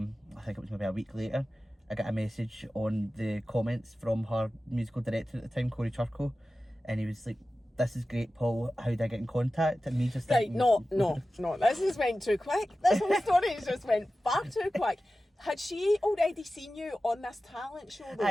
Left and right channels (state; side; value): normal; both; correlation 0.95